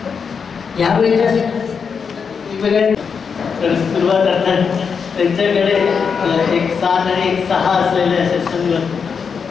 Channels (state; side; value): quieter; right; 6.1 dB